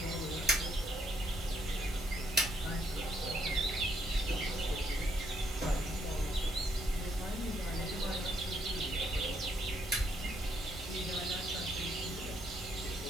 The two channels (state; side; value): normal; both; correlation 0.73